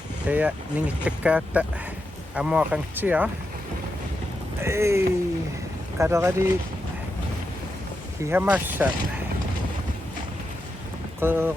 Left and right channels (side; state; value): both; normal; correlation 0.86